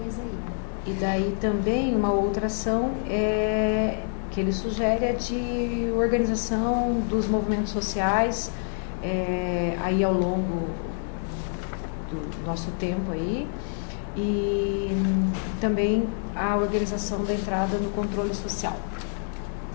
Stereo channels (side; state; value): right; silent; digital silence